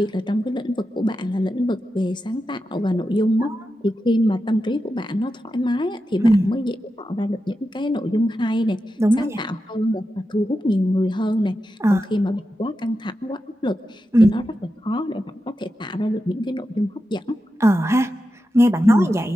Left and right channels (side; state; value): both; normal; correlation 0.90